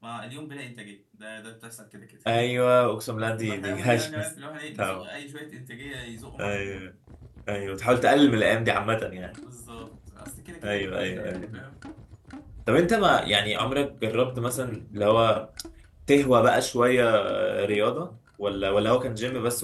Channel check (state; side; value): identical; both; correlation 1.00